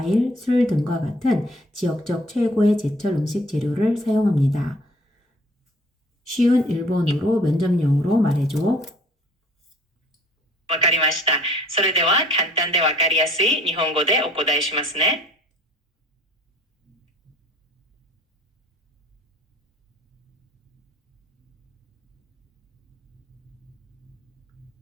술 등과 같은 지역적 최고의 제철 음식 재료를 사용합니다. 쉬운 일본어로 면접용으로 말해줘. わかりました。それでは簡単でわかりやすい日本語でお答えしますね。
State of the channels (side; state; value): both; normal; correlation 0.54